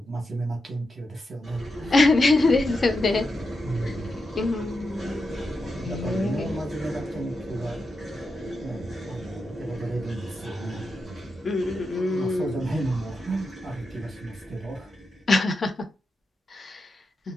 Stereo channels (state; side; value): normal; both; correlation 0.87